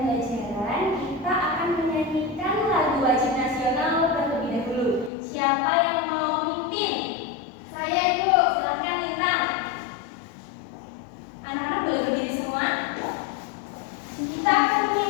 kita akan menyanyikan lagu wajib nasional terlebih dahulu. Siapa yang mau memimpin? Saya, Ibu. Silakan Lintang. Anak-anak boleh berdiri semua. Kita akan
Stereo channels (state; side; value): drops out; right; at 5.1 s